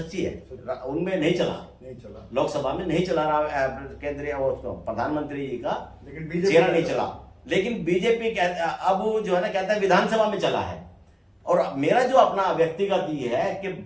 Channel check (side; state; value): both; identical; correlation 1.00